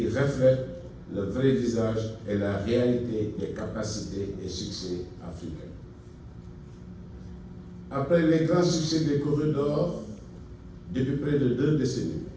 reflète le vrai visage et la réalité des capacités et succès africains. Après les grands succès des corridors depuis près de 2 décennies,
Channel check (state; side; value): identical; both; correlation 1.00